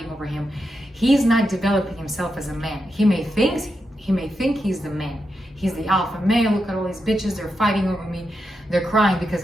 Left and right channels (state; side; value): normal; both; correlation 0.86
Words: over him, he's not developing himself as a man. He may think he's the man. He's the alpha male. Look at all these bitches, they're fighting over me. they're crying because